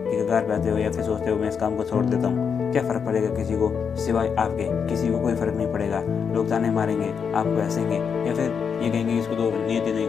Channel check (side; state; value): right; quieter; 6.6 dB